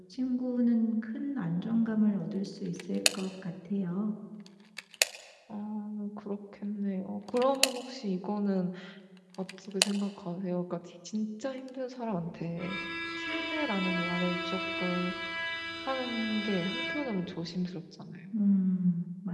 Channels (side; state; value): both; identical; correlation 1.00